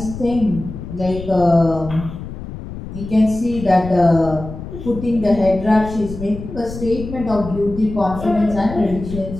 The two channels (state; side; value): noise; left; rumble, 10 dB below the sound